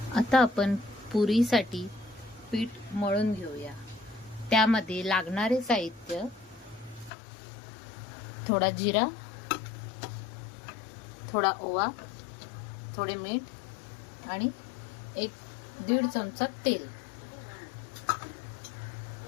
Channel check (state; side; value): drops out; right; at 7.1 s